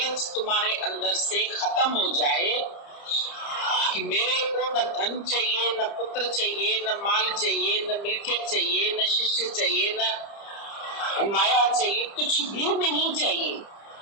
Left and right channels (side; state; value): right; late; 30 ms